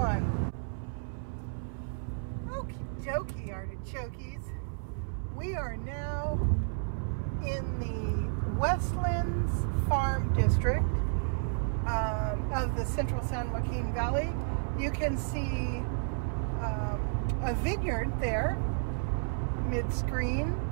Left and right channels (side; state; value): left; silent; 57 dB below the other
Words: Okie dokie, artichokes. We are now in the Westlands Farm District of the Central San Joaquin Valley. You can see a vineyard there, mid-screen.